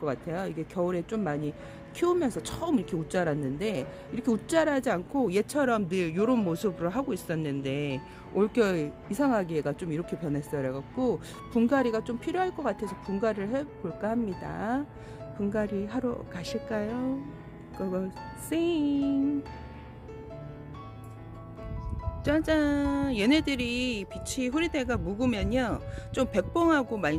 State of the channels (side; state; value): both; identical; correlation 1.00